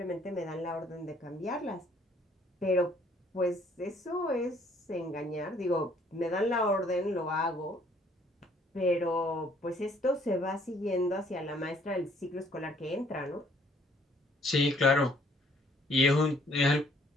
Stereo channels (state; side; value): normal; both; correlation 0.62